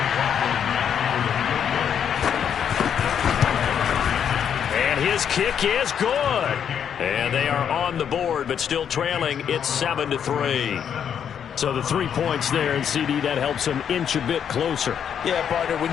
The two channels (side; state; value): right; quieter; 8.3 dB